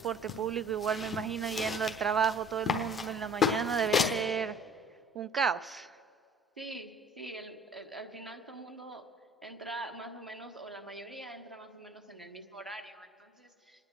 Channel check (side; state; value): both; normal; correlation 0.51